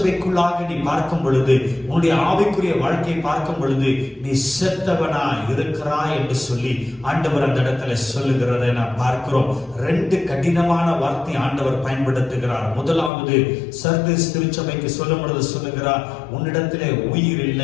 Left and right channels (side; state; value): right; drops out; at 13.1 s